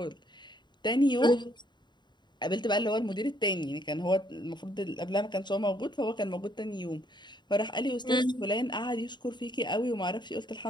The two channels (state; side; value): late; right; 0.22 ms